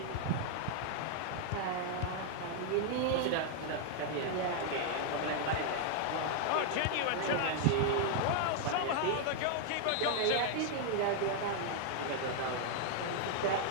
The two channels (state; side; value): different; both; correlation 0.00